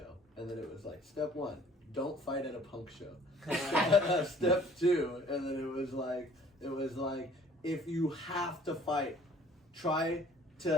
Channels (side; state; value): both; normal; correlation 0.54